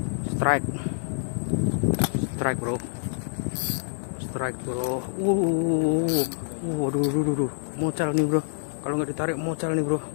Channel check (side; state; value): right; silent; digital silence